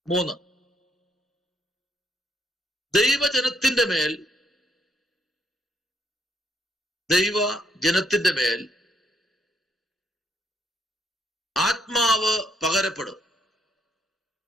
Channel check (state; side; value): normal; both; correlation 0.72